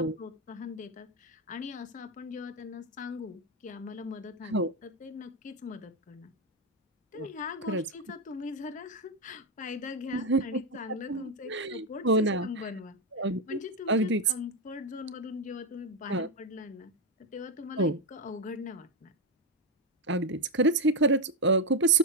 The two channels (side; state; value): both; normal; correlation 0.05